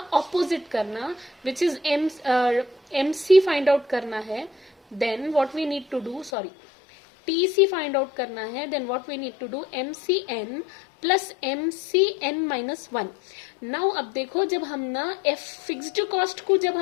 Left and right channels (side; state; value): right; drops out; at 6.3 s